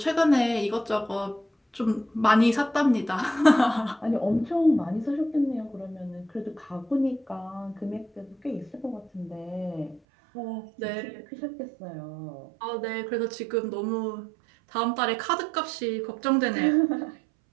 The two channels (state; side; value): drops out; left; at 10.0 s